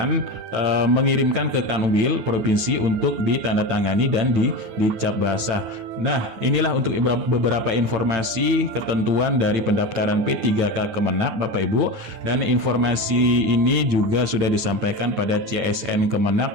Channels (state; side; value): late; left; 9.4 ms